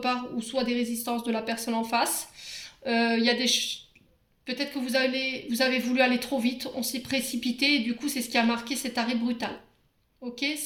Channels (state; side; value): identical; both; correlation 1.00